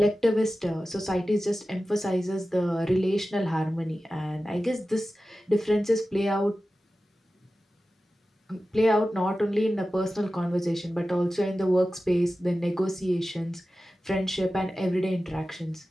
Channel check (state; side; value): normal; both; correlation 0.94